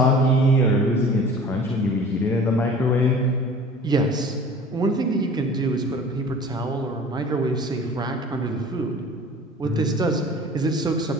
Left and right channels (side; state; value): both; normal; correlation 0.44